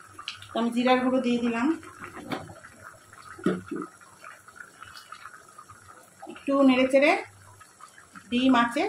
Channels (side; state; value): both; identical; correlation 1.00